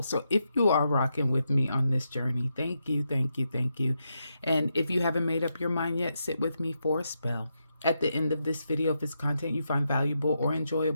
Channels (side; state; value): both; inverted; correlation -0.84